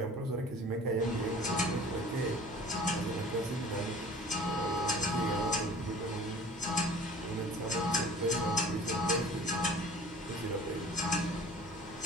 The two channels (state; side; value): normal; both; correlation 0.46